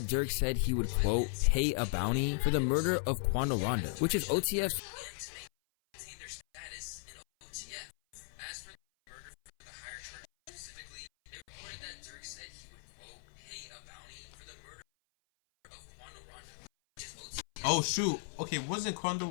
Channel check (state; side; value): silent; right; 53 dB below the other